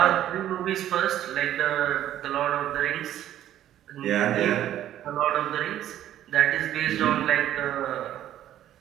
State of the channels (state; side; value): quieter; left; 11.9 dB